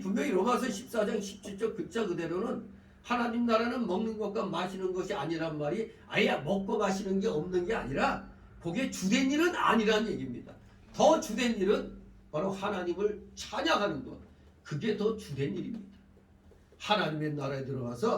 로마서 14장 17절 글자 그대로는 하나님 나라는 먹는 것과 마시는 것이 아니란 말이 아예 먹고 마시는 게 없는 게 아니라 그게 주된 일은 아니라는 얘기입니다. 더 주된 일은 바로 하나님을 찬양하는 것. 그게 더 주된 일입니다. 하나님의 나라에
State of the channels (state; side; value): identical; both; correlation 1.00